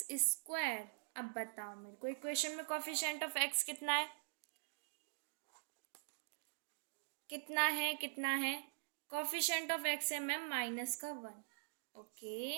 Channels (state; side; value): silent; left; digital silence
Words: square. अब बताओ मेरे को इक्वेशन में कॉफिशिएंट ऑफ एक्स कितना है? कितना है? कॉफिशिएंट ऑफ एक्स है मैम माइनस का 1। ओके।